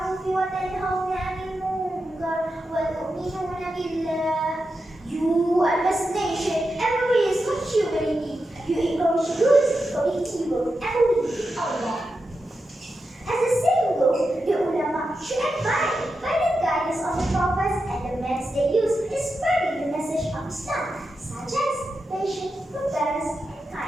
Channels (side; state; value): both; normal; correlation 0.89